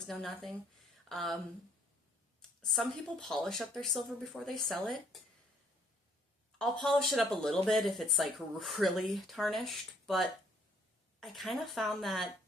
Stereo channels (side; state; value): both; normal; correlation 0.64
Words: no nothing. Some people polish up their silver before they sell it. I'll polish it up a little bit if it's like really tarnished, but I kind of found that